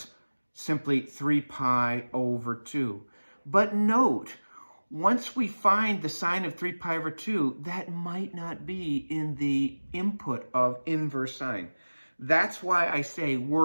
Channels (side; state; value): both; inverted; correlation -1.00